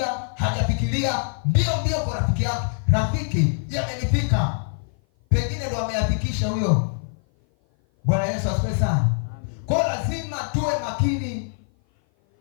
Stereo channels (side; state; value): right; silent; 56 dB below the other